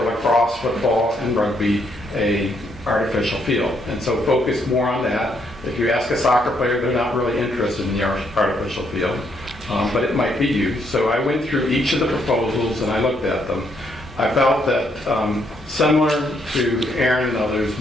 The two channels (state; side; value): normal; both; correlation 0.73